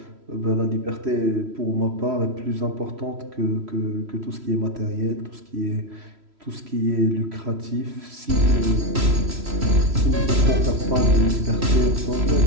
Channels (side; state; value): left; late; 3.1 ms